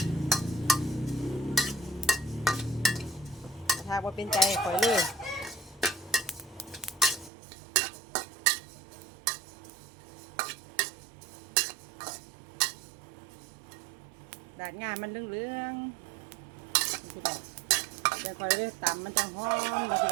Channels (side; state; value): left; drops out; at 7.3 s